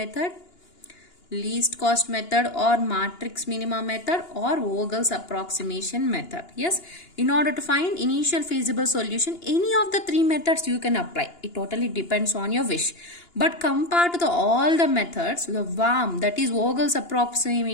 least cost method or matrix minima method or Vogel's approximation method. Yes, in order to find initial feasible solution, any of the three methods you can apply. It totally depends on your wish. But compared to all the methods, the VAM, that is Vogel's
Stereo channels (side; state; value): right; late; 2.9 ms